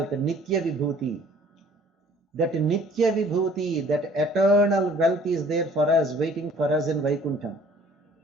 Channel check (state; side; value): normal; both; correlation 0.54